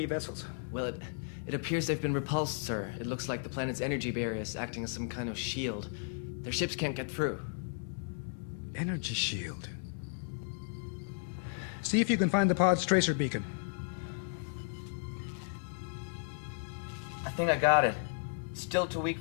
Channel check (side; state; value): right; silent; digital silence